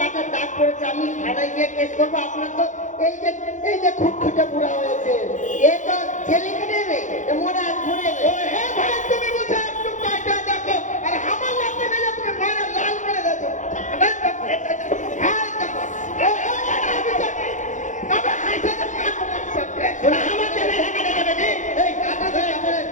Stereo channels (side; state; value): right; late; 0.36 ms